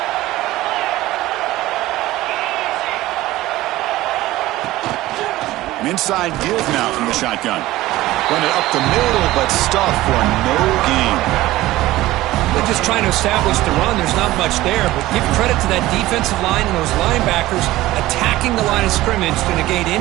Inside give now from the shotgun. Run it up the middle, but stuff for no gain. They're just trying to establish the run. There's not much there, but give credit to that defensive line and those linebackers attacking the line of scrimmage to negate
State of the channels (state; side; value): quieter; left; 16.8 dB